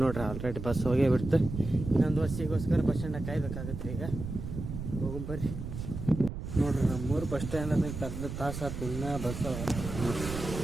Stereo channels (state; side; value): noise; right; rumble, 7 dB below the sound